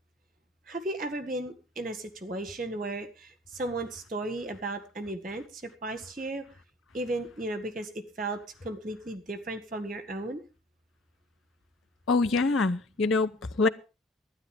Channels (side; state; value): both; normal; correlation 0.49